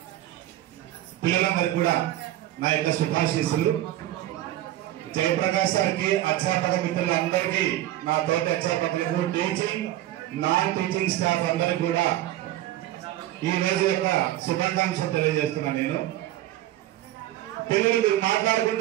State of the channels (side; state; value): left; quieter; 14.3 dB